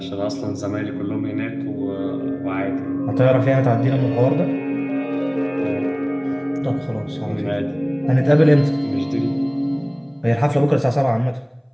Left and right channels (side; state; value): both; identical; correlation 1.00